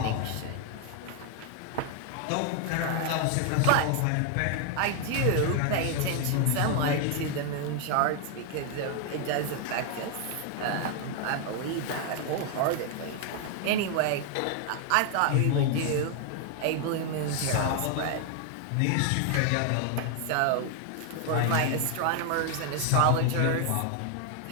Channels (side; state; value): both; different; correlation 0.00